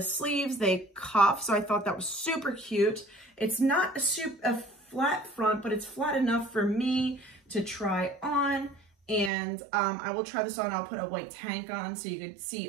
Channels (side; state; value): left; drops out; at 9.3 s